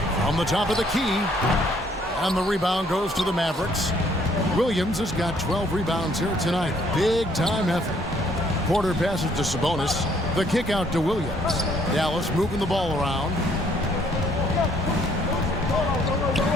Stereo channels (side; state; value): both; normal; correlation 0.65